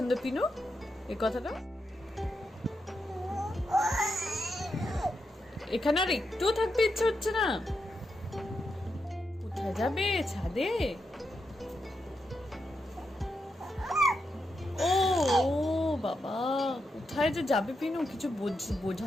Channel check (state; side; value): normal; both; correlation 0.85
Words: পিনু এই কথাটা। এখানে আর একটুও থাকতে ইচ্ছে হচ্ছে না? কোথায় যাবে? ছাদে? ও ও বাবা, কোথায় যে যাবে পিনু, কিছু